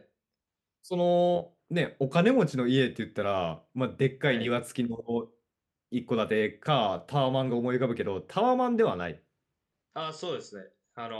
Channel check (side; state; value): both; identical; correlation 1.00